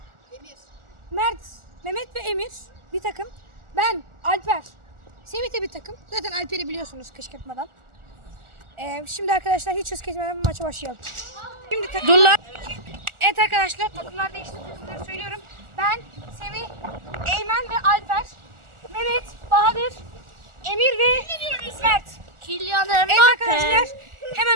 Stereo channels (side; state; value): left; late; 1.4 ms